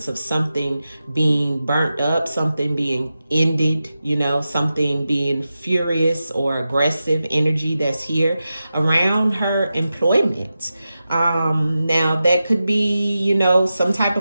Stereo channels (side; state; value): both; inverted; correlation -0.92